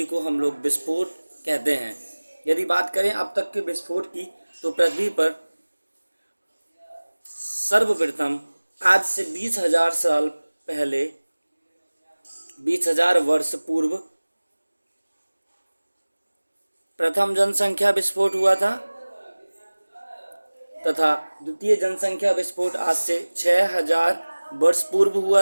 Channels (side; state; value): both; inverted; correlation -1.00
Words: को हम लोग विस्फोट कहते हैं। यदि बात करें अब तक के विस्फोट की तो पृथ्वी पर सर्वप्रथम आज से 20,000 साल पहले, 20,000 वर्ष पूर्व प्रथम जनसंख्या विस्फोट हुआ था तथा द्वितीय जनसंख्या विस्फोट आज से 6,000 वर्ष पूर्व